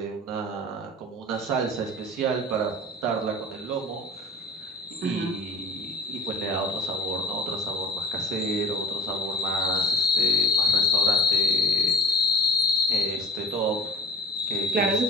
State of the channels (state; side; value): normal; both; correlation 0.42